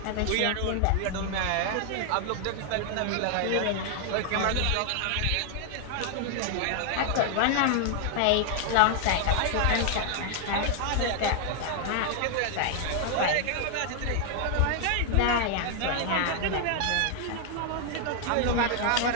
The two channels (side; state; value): both; different; correlation 0.00